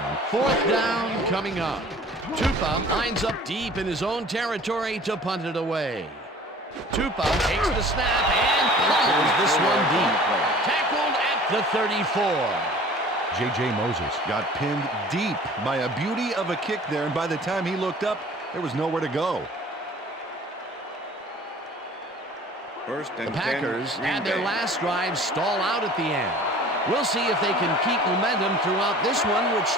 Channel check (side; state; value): both; normal; correlation 0.47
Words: Fourth down coming up. Tupa lines up deep in his own territory to punt it away. Tupa takes the snap and pummels this one deep. Tackled at the 34. J.J. Moses got pinned deep by a beauty of a kick there, and by the time he looked up, there was nowhere to go. The Packers had their last drive stall out at the end. We'll see if they can keep momentum throughout this one, which